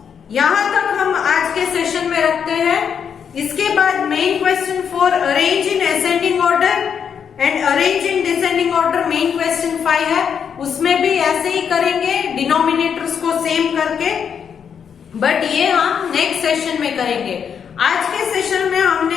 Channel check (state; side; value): quieter; right; 7.4 dB